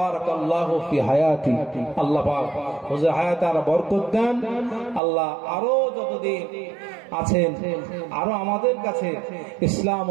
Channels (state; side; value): drops out; left; at 5.0 s